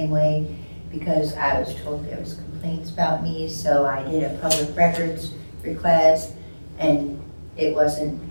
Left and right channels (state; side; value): inverted; both; correlation -1.00